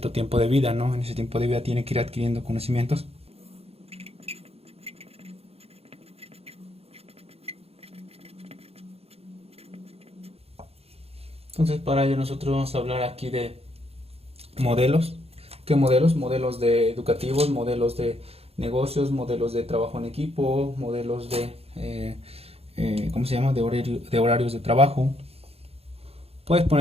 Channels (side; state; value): left; late; 0.29 ms